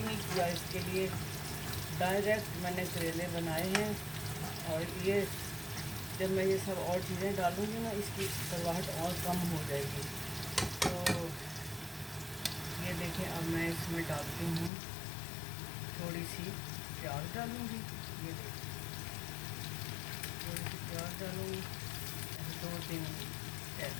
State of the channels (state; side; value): drops out; right; at 14.7 s